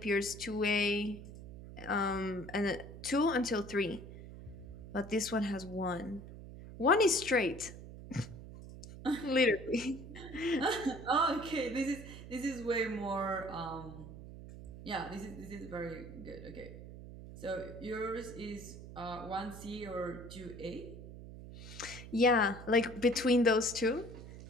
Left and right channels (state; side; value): noise; right; hum, 13 dB below the sound